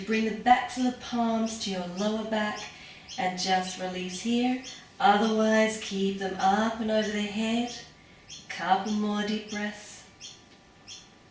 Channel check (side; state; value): both; identical; correlation 1.00